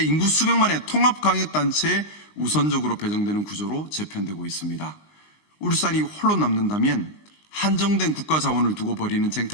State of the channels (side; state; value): right; late; 19 ms